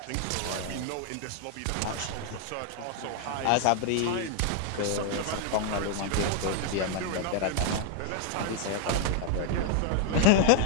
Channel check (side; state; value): both; different; correlation 0.00